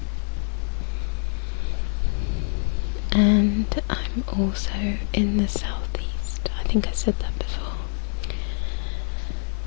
And I'm also in the southeast. I think I said that before.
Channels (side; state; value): right; silent; 62 dB below the other